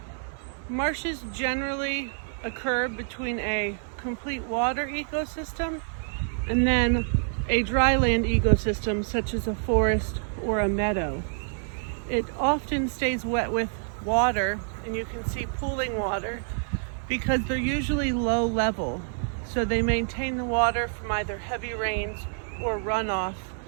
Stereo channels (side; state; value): left; silent; digital silence